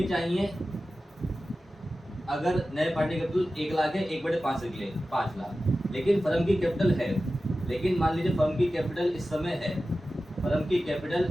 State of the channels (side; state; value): both; normal; correlation 0.94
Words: चाहिए, अगर नए पार्टनर की कैपिटल 1 लाख है 1/5 के लिए 5 लाख, लेकिन फर्म की कैपिटल है, लेकिन मान लीजिए फर्म की कैपिटल इस समय है, फर्म की कैपिटल